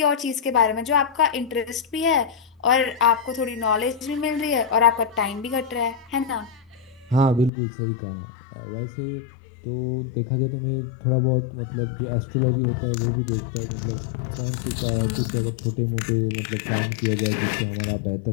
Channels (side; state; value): right; drops out; at 7.5 s